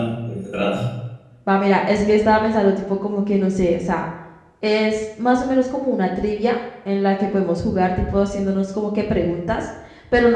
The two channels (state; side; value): identical; both; correlation 1.00